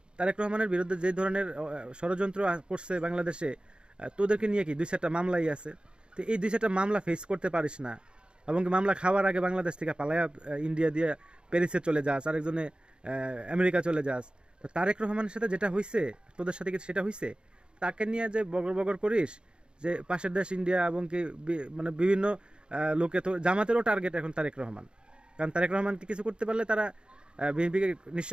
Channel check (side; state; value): left; late; 0.053 ms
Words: তারেক রহমানের বিরুদ্ধে যে ধরনের ষড়যন্ত্র করছে বাংলাদেশে, তোদেরকে নিয়ে কি 2-4টা মামলাই আছে। তো এই 2-4টা মামলা ফেস করতে পারিস না, এবং কি মামলা খাওয়ার আগে বাংলাদেশ থেকে পালায়া ইন্ডিয়া দিয়ে প্যারিসে চলে যাস, আরেকজনে আমেরিকা চলে যাস। তো তারেক রহমানের সাথে যেটা হইছে, তোদের সাথে কি সেটা হইছে? তাকে নিয়ে যে বগর বগর করিস যে পাশের দেশ ইন্ডিয়া, এবং কি মানে বিভিন্ন লোকে, তো জামাতেরও টার্গেট এখন তারেক রহমান। কারণ তারেক রহমানকে কিছু করতে পারলে তারা বিএনপিকে